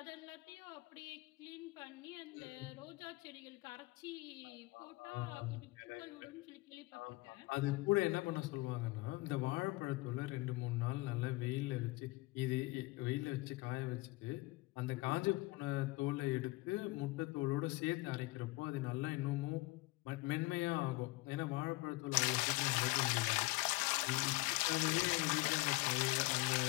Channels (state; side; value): quieter; right; 22.0 dB